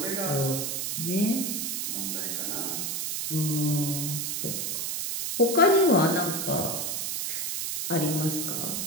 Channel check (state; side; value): noise; right; hiss, 2 dB below the sound